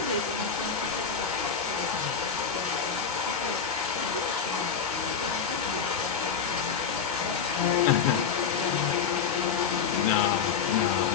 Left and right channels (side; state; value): right; quieter; 6.6 dB